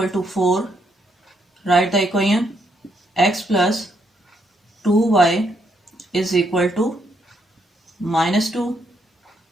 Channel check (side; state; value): both; normal; correlation 0.75